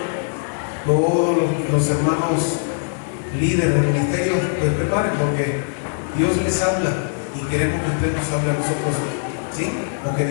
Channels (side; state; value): right; silent; digital silence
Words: todos los hermanos líderes del ministerio, pues preparen, porque Dios les habla y queremos que usted nos hable a nosotros, ¿sí? Porque